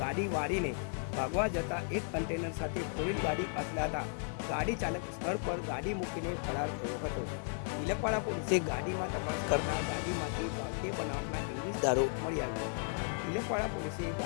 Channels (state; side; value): silent; right; 54 dB below the other